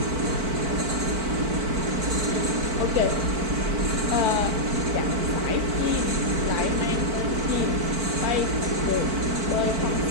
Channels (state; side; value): late; left; 4.5 ms